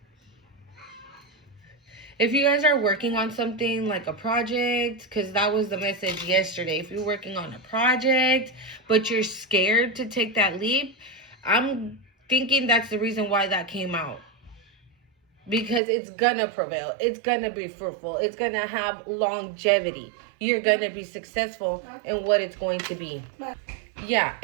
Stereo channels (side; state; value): left; drops out; at 15.8 s